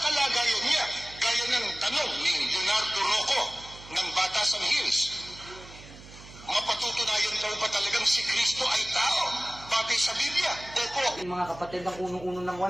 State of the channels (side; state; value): right; noise; hum, 18 dB below the sound